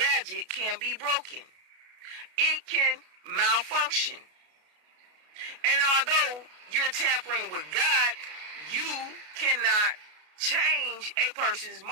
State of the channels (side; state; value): left; late; 33 ms